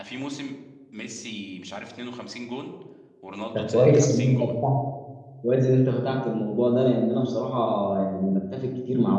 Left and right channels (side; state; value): both; identical; correlation 1.00